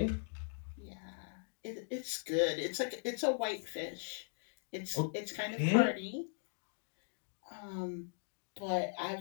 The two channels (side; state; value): right; silent; digital silence